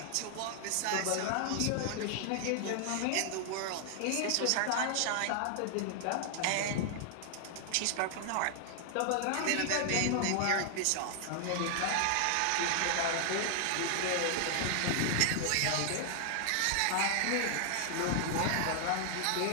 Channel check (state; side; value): different; both; correlation 0.00